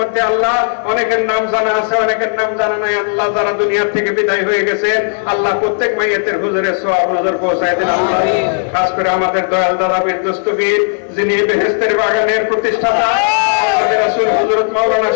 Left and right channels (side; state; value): right; silent; 67 dB below the other